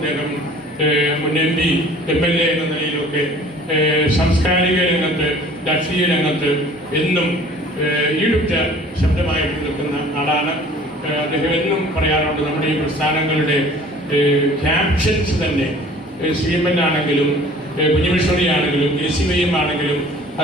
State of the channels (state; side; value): normal; both; correlation 0.49